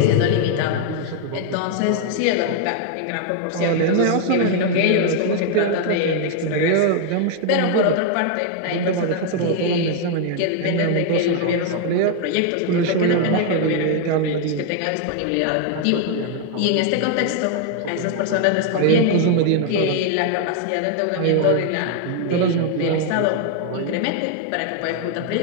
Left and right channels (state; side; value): different; both; correlation 0.00